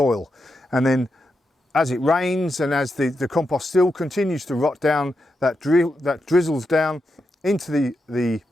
and then as it rains and as the compost still continues to rot down, that drizzles down into the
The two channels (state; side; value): normal; both; correlation 0.86